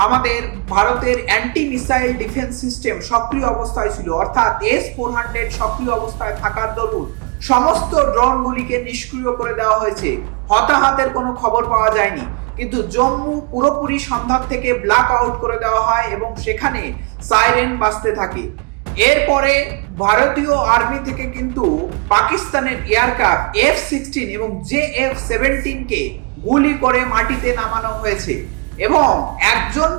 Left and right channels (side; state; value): left; quieter; 30.3 dB